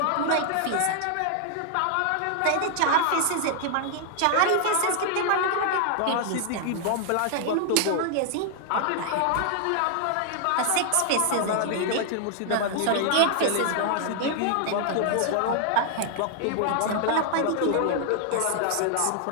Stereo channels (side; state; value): both; different; correlation 0.00